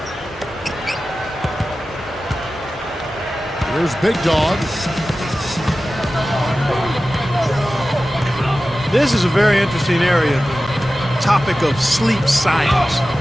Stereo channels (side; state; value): both; normal; correlation 0.95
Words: Here's Big Dog. This is a very interesting area, the topic of sleep science.